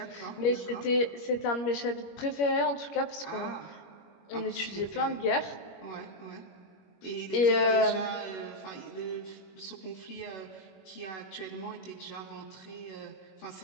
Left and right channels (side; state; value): right; late; 21 ms